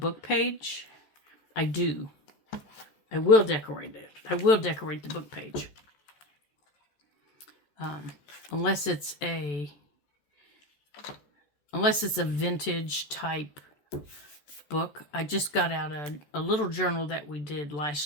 page, I do. I will decorate it. I will decorate the book page. Unless it's a vintage type book. I just got out a little journal that we did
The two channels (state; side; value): late; right; 14 ms